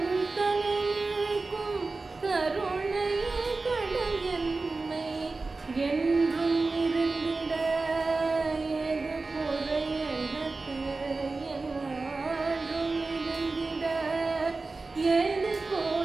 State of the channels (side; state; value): left; quieter; 3.7 dB